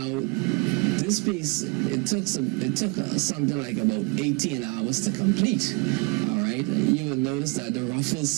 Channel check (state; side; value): quieter; left; 28.7 dB